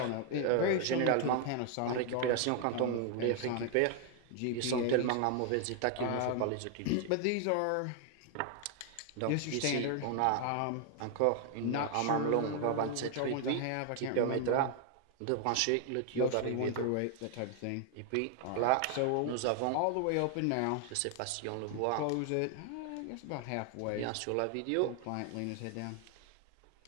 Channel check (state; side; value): different; both; correlation 0.00